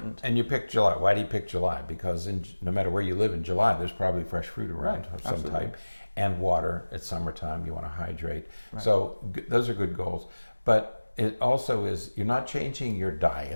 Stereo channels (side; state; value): both; inverted; correlation -1.00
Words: And you picked July. Why do you pick July? Because no matter where you live in July, there's probably fresh fruit around of some type. And water. It's summertime, you want to hydrate. Right. So those are good goals. But it also is, you're not changing your